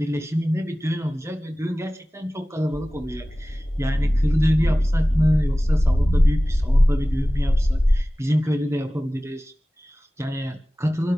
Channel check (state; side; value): normal; both; correlation 0.97